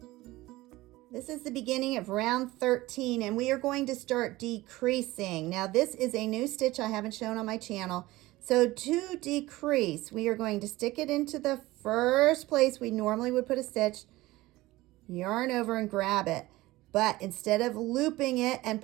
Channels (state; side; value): quieter; left; 18.6 dB